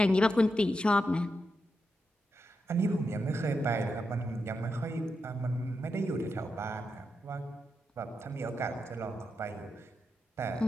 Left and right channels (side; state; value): both; normal; correlation 0.86